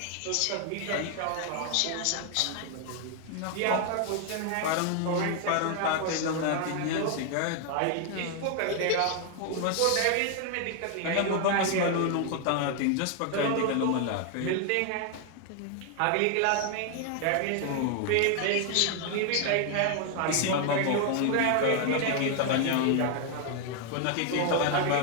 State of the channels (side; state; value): both; different; correlation 0.00